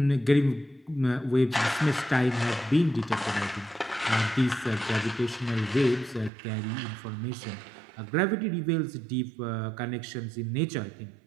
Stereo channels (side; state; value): left; drops out; at 6.3 s